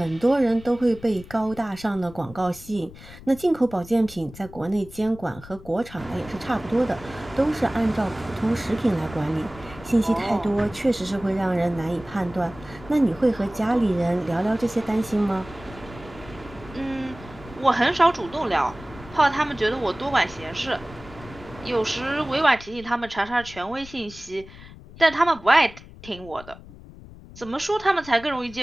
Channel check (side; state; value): left; noise; rumble, 18 dB below the sound